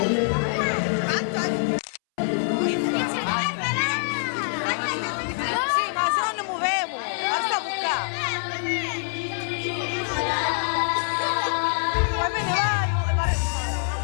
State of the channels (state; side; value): silent; right; 62 dB below the other